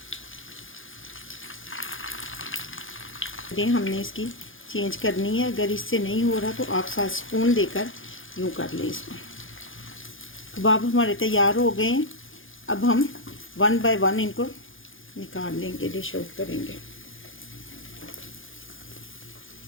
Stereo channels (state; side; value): late; right; 0.58 ms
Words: हमने इसकी चेंज करनी है। अगर इससे नहीं हो रहा तो आप साथ स्पून देकर यूँ कर लें इसको। कबाब हमारे तैयार हो गए हैं। अब हम 1 बाय 1 इनको निकाल लेंगे, डिश आउट करेंगे।